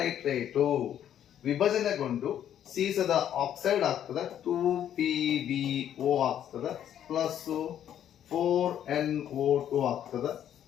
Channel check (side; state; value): right; quieter; 10.3 dB